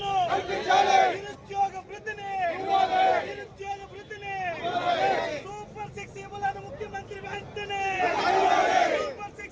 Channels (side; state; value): both; identical; correlation 1.00